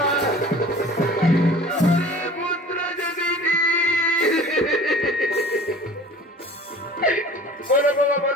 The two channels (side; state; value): both; normal; correlation 0.44